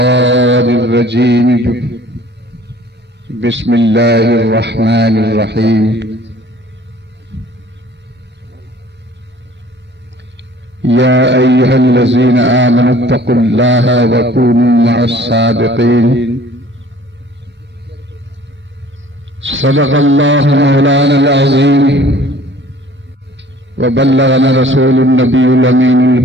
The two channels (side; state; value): both; normal; correlation 0.52